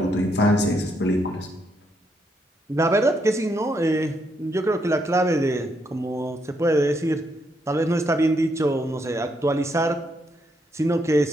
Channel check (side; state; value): both; normal; correlation 0.77